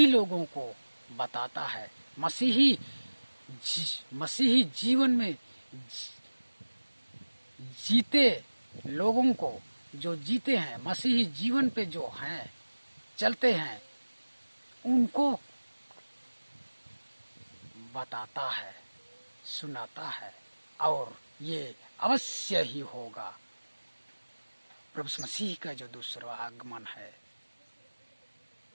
लोगों को बताता है। मसीही मसीही जीवन में जीते लोगों को, जो जीते हैं मसीही जीवन पे, जो हैं चलते हैं, उनको बताता है, सुनाता है, और ये अवश्य ही होगा। प्रभु मसीह का जो दूसरा आगमन है,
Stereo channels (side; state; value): both; inverted; correlation -1.00